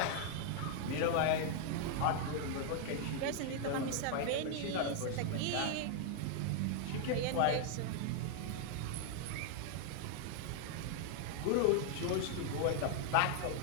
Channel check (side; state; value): both; different; correlation 0.00